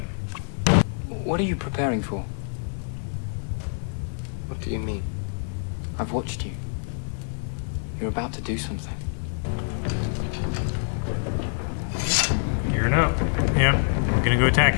What are you preparing for? What do you mean? I've watched you. You're about to do something. Gearing up. Yep. We're gonna go attack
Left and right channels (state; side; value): silent; right; digital silence